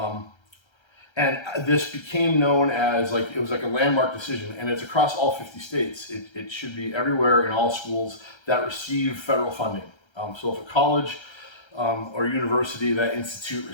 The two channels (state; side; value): late; right; 1.3 ms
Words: And this became known as, it was like a landmark decision, and it's across all 50 states. It should be everywhere in all schools that receive federal funding. So if a college or university that institute